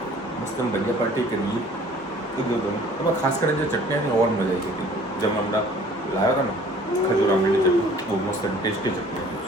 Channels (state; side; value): normal; both; correlation 0.52